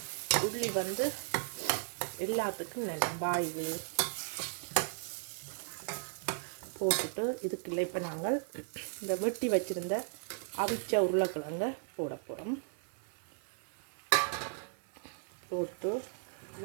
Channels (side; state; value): left; silent; 54 dB below the other